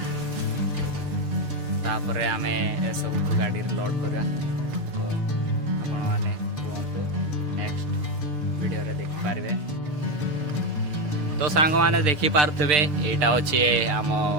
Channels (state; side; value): late; left; 6.7 ms